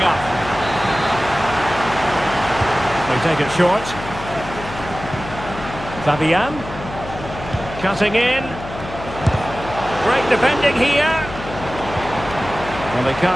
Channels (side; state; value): left; noise; hum, 11 dB below the sound